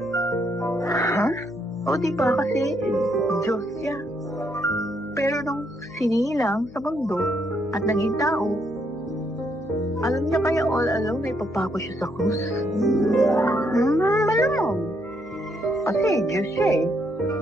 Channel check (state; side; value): noise; left; hum, 26 dB below the sound